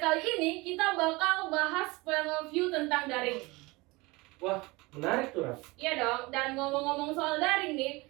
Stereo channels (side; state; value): left; quieter; 23.6 dB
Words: ini kita bakal bahas Point of View tentang daring. Wah, menarik tuh, Ram. Iya dong, dan ngomong-ngomong soal daring nih,